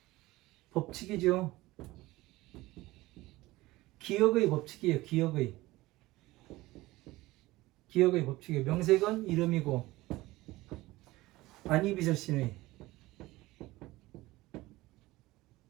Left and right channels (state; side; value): quieter; left; 18.9 dB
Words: 법칙이죠. 기억의 법칙이에요. 기억의 법칙이에요. 명색은 이름이고, 안이비설신의.